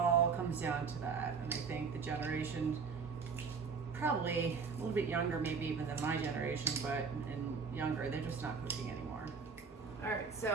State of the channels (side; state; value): left; quieter; 5.4 dB